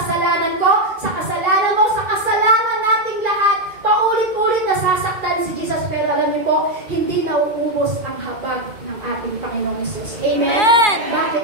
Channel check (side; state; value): left; late; 2.4 ms